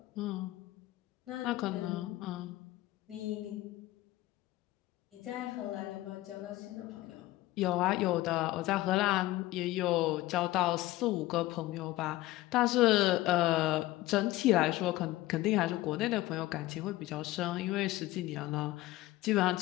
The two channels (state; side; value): quieter; right; 17.2 dB